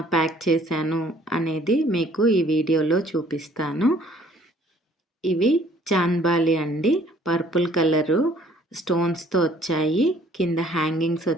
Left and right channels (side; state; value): both; normal; correlation 0.58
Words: ప్యాక్ చేశాను అనేది మీకు ఈ వీడియోలో చూపిస్తాను. ఇవి చాంద్బాలి అండి. పర్పుల్ కలరు స్టోన్స్‌తో వచ్చాయి. కింద హ్యాంగింగ్స్